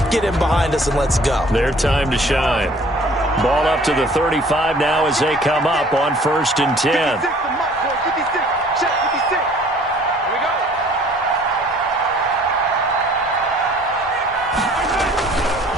Get in behind us and let's go. Their time to shine. Ball up to the 35 now as they come up on 1st and 10.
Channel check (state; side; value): normal; both; correlation 0.54